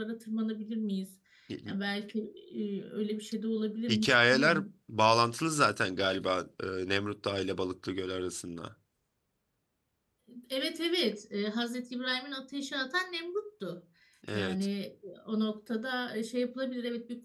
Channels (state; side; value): identical; both; correlation 1.00